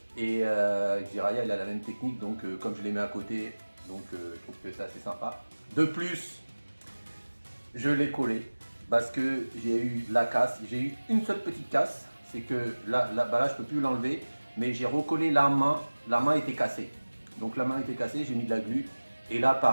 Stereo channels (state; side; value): inverted; both; correlation -1.00